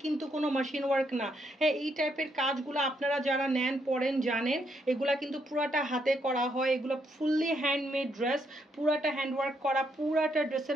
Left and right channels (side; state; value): both; normal; correlation 0.76